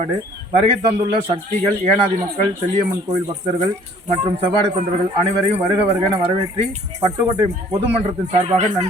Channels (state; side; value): normal; both; correlation 0.55